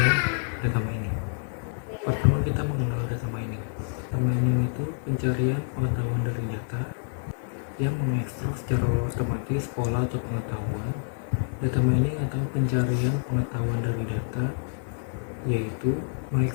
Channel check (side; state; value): right; silent; digital silence